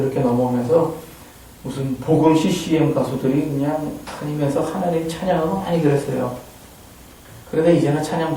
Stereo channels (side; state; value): both; identical; correlation 1.00